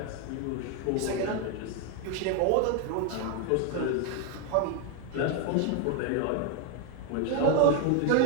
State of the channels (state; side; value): different; both; correlation 0.01